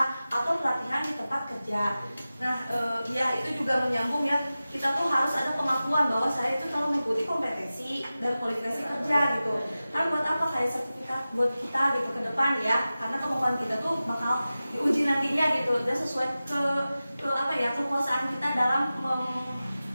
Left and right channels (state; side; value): inverted; both; correlation -0.95